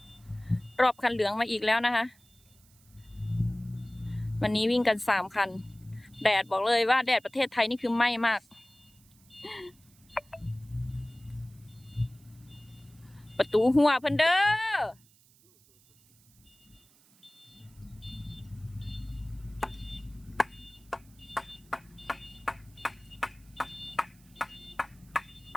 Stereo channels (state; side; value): noise; right; hiss, 29 dB below the sound